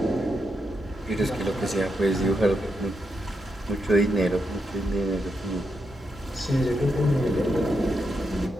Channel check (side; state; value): both; normal; correlation 0.83